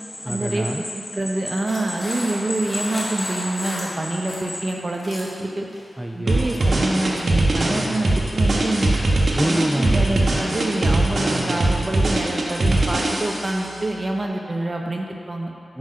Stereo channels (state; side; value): normal; both; correlation 0.95